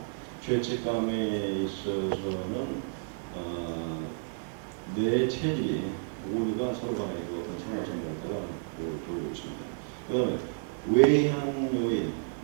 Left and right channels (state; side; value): silent; left; digital silence